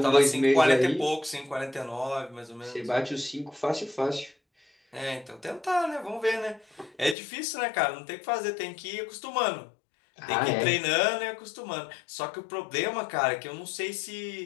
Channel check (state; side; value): drops out; right; at 7.2 s